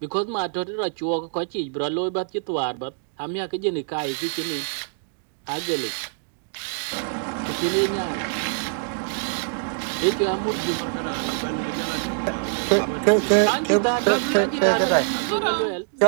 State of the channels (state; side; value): silent; left; digital silence